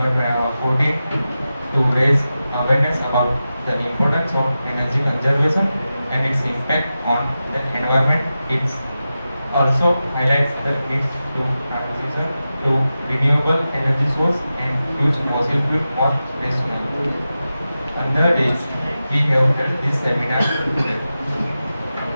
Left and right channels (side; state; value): both; inverted; correlation -0.93